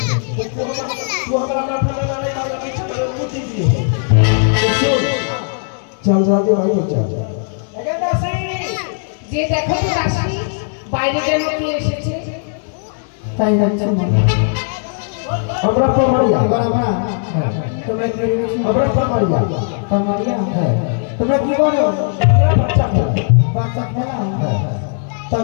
वो हमारा अपना बनाने का लगे चक्कर मुट्ठी दी चल जाते भाई चल लेकिन दासी যে দেখো তো দাসী বাইরে যেন কি এসেছে তাই যাচ্ছে আমরা পমারিয়া এবার আমরা তোমরা কি আমরা পমারিয়া পমারিয়া তোমরা কি করো বাচ্চা খেলা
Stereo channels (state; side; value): silent; right; digital silence